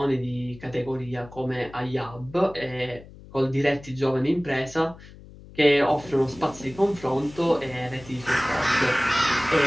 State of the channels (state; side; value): noise; left; hum, 19 dB below the sound